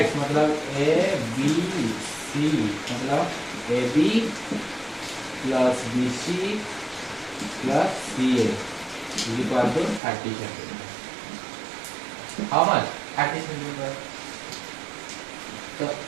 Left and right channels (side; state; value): left; drops out; at 10.0 s